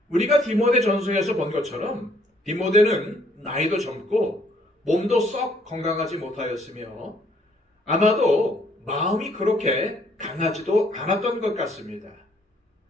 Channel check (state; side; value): normal; both; correlation 0.65